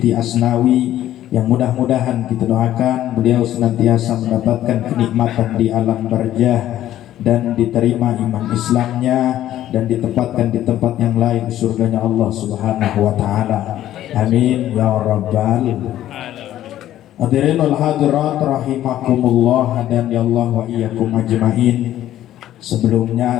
Asnawi, yang mudah-mudahan kita doakan beliau senantiasa mendapatkan kenikmatan di alam barzah dan diterima iman Islamnya dan ditempatkan di tempat yang lain surganya Allah Subhanahu wa taala. Amin ya rabbal hadirin wal hadirat rahimakumullah dan ya Allah wa iyyakum ajmain. Sebelumnya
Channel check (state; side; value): quieter; right; 12.8 dB